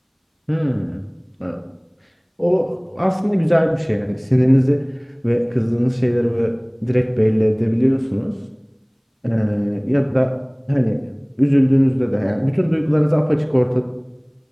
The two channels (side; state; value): both; identical; correlation 1.00